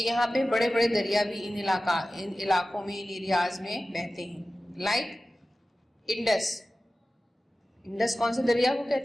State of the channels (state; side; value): normal; both; correlation 0.95